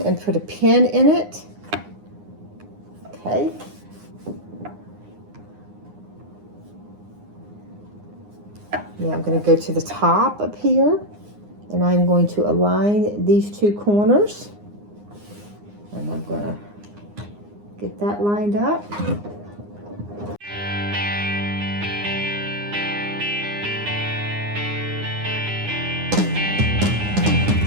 put a pin in it. Okay. Now I'm going to go to the top up here. And I'm going to align these two corners. And I'm going to get that lined up.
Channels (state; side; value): late; left; 9.7 ms